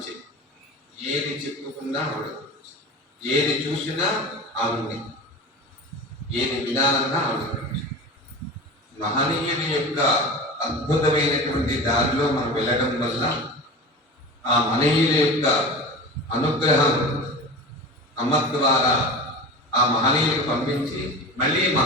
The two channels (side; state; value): both; normal; correlation 0.32